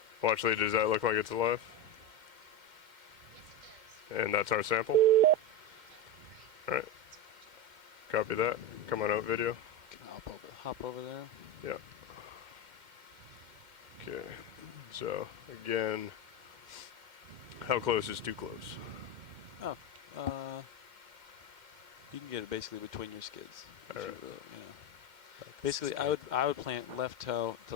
Watch, Lee, does that look like it's alive? And that's our sample. All right. Copy that. Come on out video. Hop over there. Yeah. Okay. So, again, how close is too close? Oh, you can get it basically between your skids. All right. Basically, I would plant left toe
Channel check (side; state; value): left; late; 2.1 ms